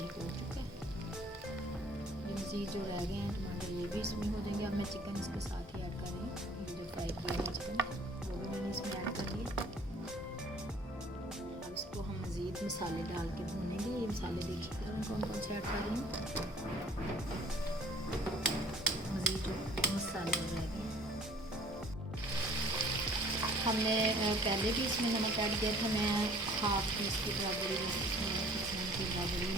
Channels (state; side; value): normal; both; correlation 0.53